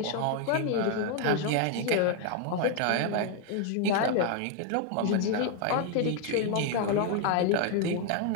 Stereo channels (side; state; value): both; different; correlation 0.01